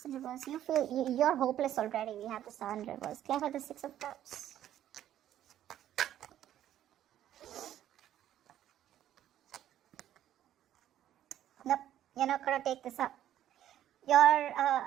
in reverse. You feel you're hopeless already. We have the Sun in reverse. Clarify the 6 of Cups. Nope, you're not going to take this up.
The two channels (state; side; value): quieter; left; 11.7 dB